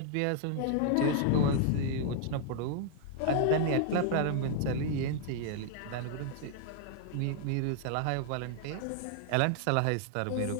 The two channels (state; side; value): different; both; correlation 0.00